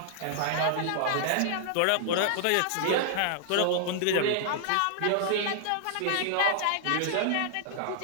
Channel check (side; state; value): both; different; correlation -0.01